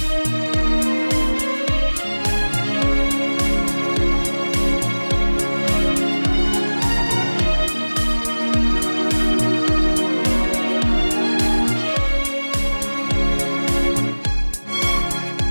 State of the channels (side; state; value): both; inverted; correlation -1.00